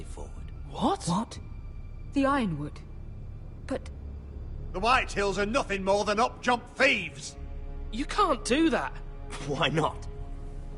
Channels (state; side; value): identical; both; correlation 1.00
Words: forward. What? What? The Ironwood? But... The Whitehills are nothing more than up-jump thieves! You can't do that! Why not?